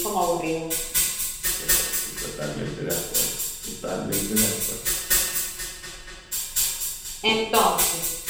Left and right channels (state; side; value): identical; both; correlation 1.00